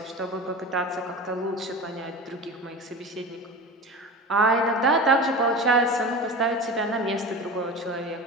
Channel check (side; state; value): both; normal; correlation 0.30